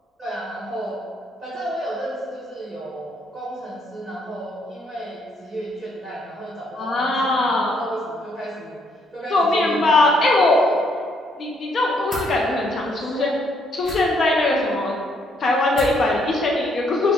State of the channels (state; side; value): normal; both; correlation 0.70